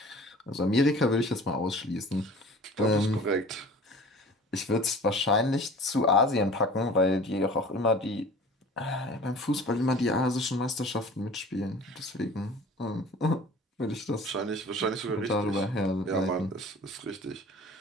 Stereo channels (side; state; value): both; normal; correlation 0.43